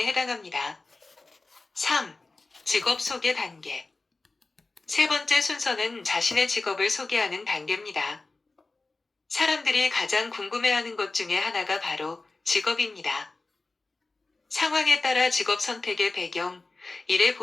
해당합니다. 3. 직업 소개 단계. 세 번째 순서는 자신의 직업을 소개하는 단계입니다. 사람들이 가장 궁금해하는 것 중에 하나가 바로 직업입니다. 상황에 따라 직업 선택의 배경, 일의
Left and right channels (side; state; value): right; quieter; 3.5 dB